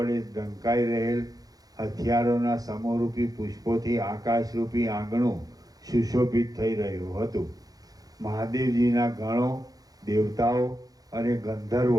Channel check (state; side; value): late; left; 0.18 ms